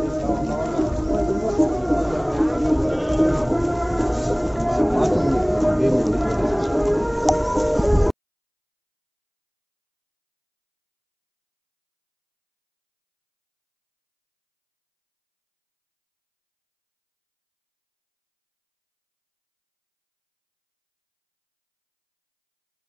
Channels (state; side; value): identical; both; correlation 1.00